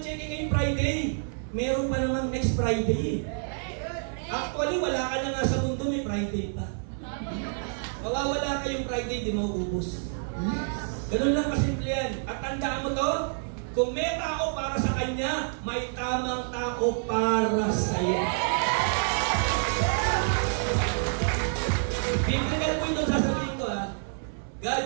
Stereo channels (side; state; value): left; silent; digital silence